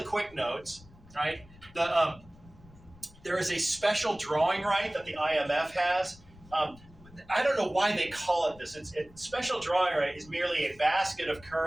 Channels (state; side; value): noise; left; rumble, 23 dB below the sound